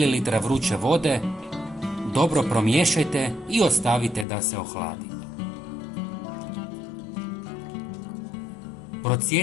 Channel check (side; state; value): right; drops out; at 4.2 s